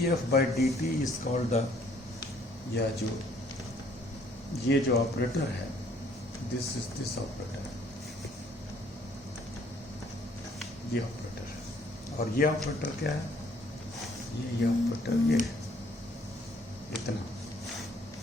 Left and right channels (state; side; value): normal; both; correlation 0.62